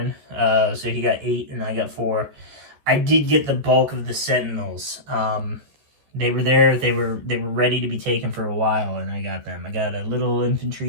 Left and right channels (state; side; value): late; left; 14 ms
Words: So he got 8 and I got 4. I did get the bulk of the sentinels. They were there. They were ready to be taken for a while, and I got them. I got a little infantry